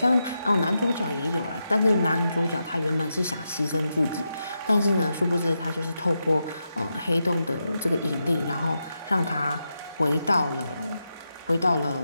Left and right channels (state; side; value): inverted; both; correlation -0.87